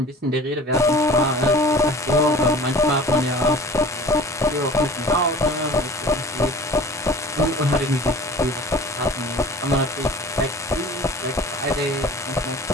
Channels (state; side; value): normal; both; correlation 0.42